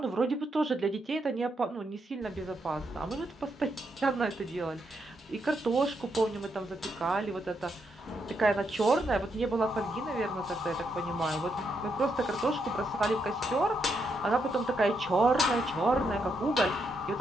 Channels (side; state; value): both; normal; correlation 0.80